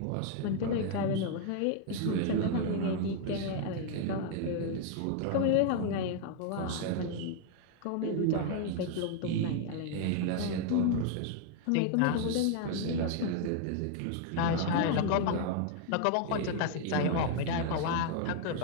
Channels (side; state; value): both; different; correlation 0.00